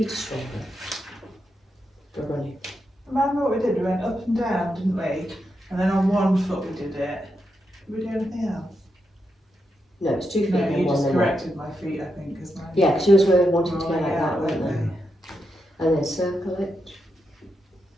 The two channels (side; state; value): both; normal; correlation 0.85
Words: are stronger for running. Remember what we did? We went up and down, didn't we? And then on one foot we did it. Did we do anything else? No, it's 2 feet No, and you one just then one. corrected my feet, I think, because mine. Yeah, because yours were wanting to go Oh, like yeah, that, weren't weren't they? And then circle it.